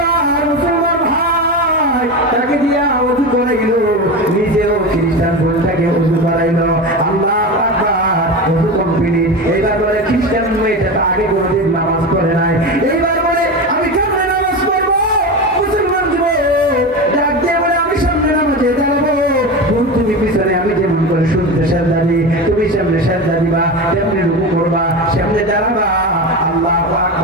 মুসলমান ভাই তাকে দিয়া ওযু করাইল, নিজেও খ্রিস্টান বোনটাকে ওযু করাইল। আল্লাহু আকবার, ওযু কমপ্লিট। এইবার বলে খ্রিস্টান মেয়েটা আগে কোনোদিন নামাজ পড়ে নাই, এইবার বলে আমি কেমনে নামাজ পড়বো? মুসলমান যুবক ডাক দিয়ে বলে আমি সামনে নামাজে দাঁড়াবো, তুমি পিছনে, আমি যেমন করে শুনতে সেজদা দিই তুমি সামনে সেজদা দিবা, তেমনি রুকু করবা, সামনে দাঁড়াবা। আল্লাহু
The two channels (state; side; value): normal; both; correlation 0.23